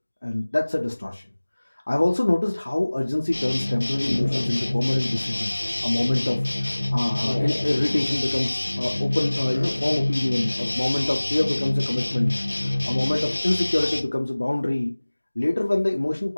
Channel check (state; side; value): inverted; both; correlation -1.00